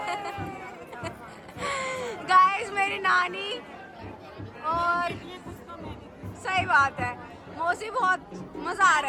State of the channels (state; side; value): identical; both; correlation 1.00